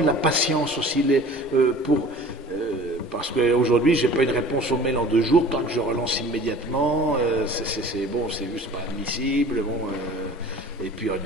la patience aussi, parce qu'aujourd'hui, j'ai pas une réponse au mail en 2 jours, tant que je relance immédiatement, c'est bon, c'est juste pas admissible, bon, et puis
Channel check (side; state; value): both; normal; correlation 0.44